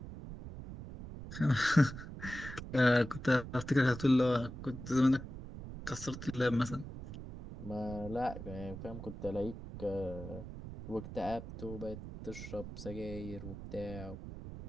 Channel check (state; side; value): noise; right; rumble, 10 dB below the sound